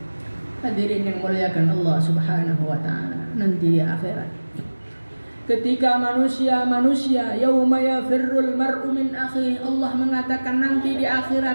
Hadirin yang muliakan Allah Subhanahu wa taala, nanti di akhirat ketika manusia yauma yafirrul mar'u min akhi, Allah mengatakan nanti di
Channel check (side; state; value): both; inverted; correlation -1.00